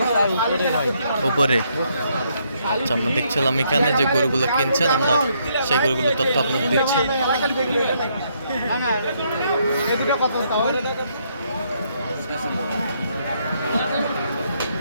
উপরে। আচ্ছা, আমরা দেখছিলাম এখানে যে গরুগুলো কিনছেন, আমরা সেই গরুগুলো তথ্য আপনাদের দিচ্ছি।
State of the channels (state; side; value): inverted; both; correlation -0.73